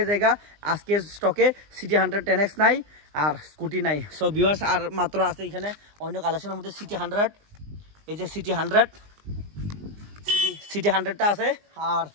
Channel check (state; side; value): late; left; 20 ms